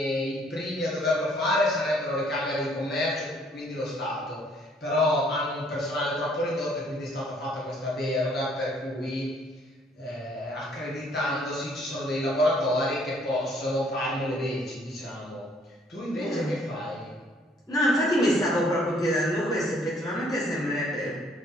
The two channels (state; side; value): normal; both; correlation 0.63